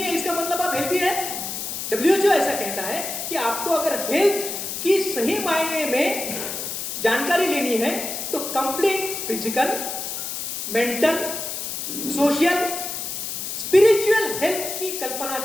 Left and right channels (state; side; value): noise; left; hiss, 5 dB below the sound